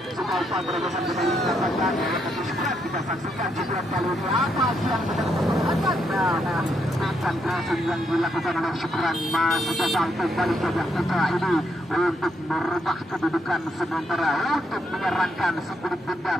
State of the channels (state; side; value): normal; both; correlation 0.77